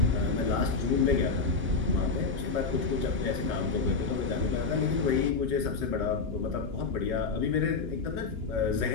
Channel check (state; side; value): quieter; right; 4.5 dB